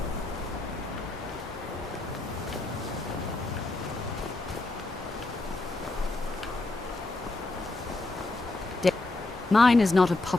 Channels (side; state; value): right; quieter; 3.0 dB